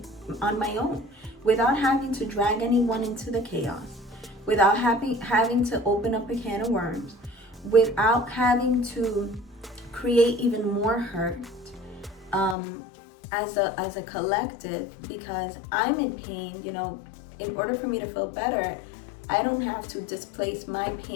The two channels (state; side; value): drops out; right; at 12.6 s